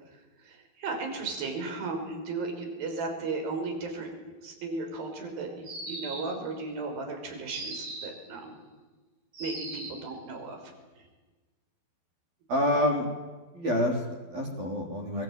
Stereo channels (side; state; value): left; late; 12 ms